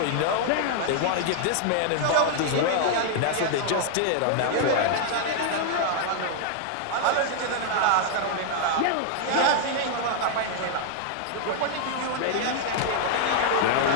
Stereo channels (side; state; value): both; different; correlation -0.01